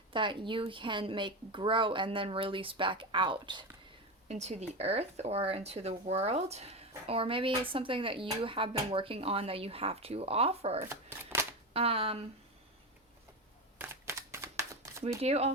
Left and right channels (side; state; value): both; normal; correlation 0.18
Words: that you can make grow and then release back out into the earth or into the world. Or maybe it's something that you have been working on that you have to offer. We do